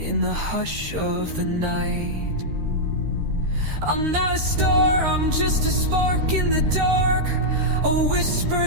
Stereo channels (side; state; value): left; late; 13 ms